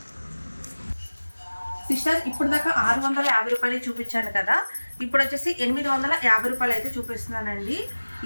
సిస్టర్ ఇప్పుడు దాకా 650 రూపాయలు చూపించాను కదా, ఇప్పుడు వచ్చేసి 850 రూపాయలు అయితే చూపిస్తున్నానండి.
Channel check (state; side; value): inverted; both; correlation -1.00